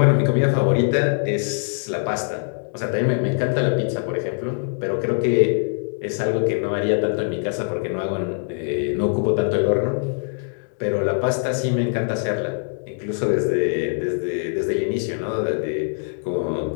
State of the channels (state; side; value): silent; right; digital silence